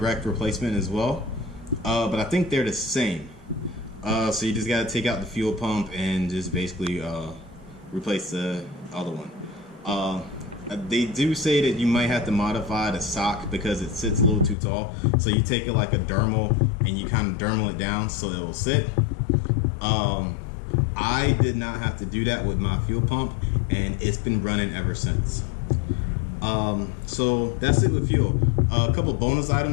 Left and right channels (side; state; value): right; drops out; at 14.6 s